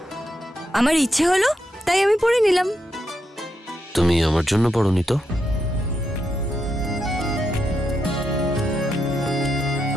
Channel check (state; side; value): normal; both; correlation 0.83